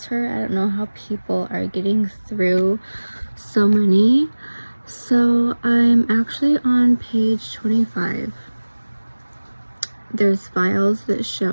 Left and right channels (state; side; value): inverted; both; correlation -1.00